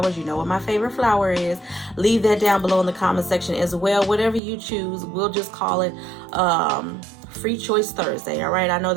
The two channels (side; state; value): left; drops out; at 4.4 s